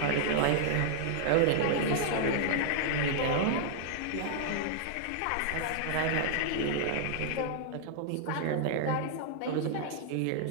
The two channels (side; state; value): both; different; correlation -0.01